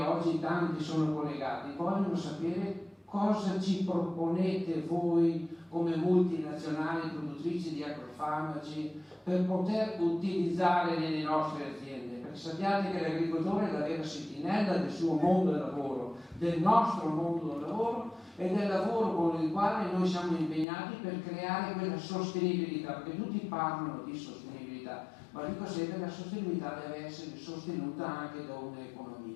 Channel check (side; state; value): right; drops out; at 20.7 s